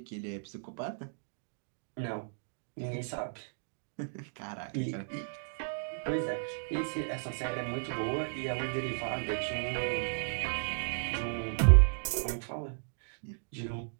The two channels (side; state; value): left; silent; digital silence